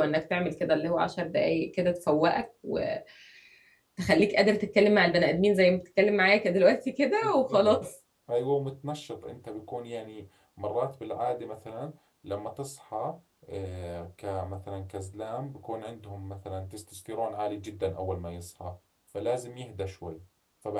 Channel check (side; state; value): both; identical; correlation 1.00